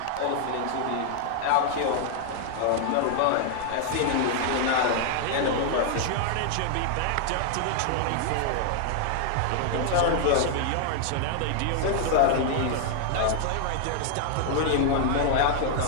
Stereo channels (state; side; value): different; both; correlation 0.00